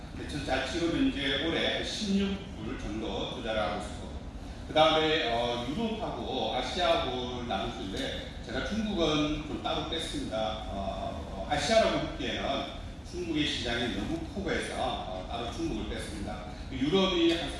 지금 현재 올해 16불 정도 투자를 하고 있고, 그 다음에 유럽하고 아시아하고 나누는데 제가 중국은 좀 따로 뺐습니다. 아시아라고 듣기에는 중국의 시장이 너무 커버해서 따로 중국을 뺐습니다. 유럽이 한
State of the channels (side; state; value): both; identical; correlation 1.00